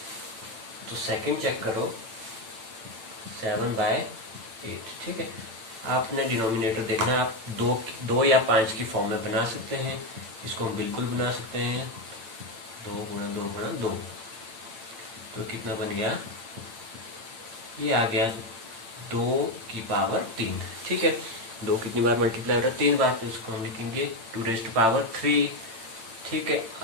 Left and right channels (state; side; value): late; left; 8.9 ms